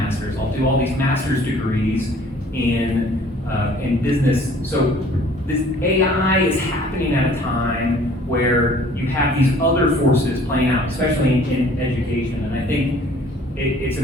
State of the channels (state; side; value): normal; both; correlation 0.54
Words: I'll do all these master's degrees in business. So this AI is happening at a time where you have these other forces playing out, especially in education. And I think it's